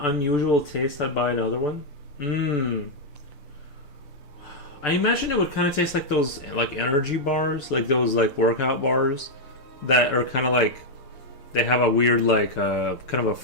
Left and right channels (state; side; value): late; right; 6.8 ms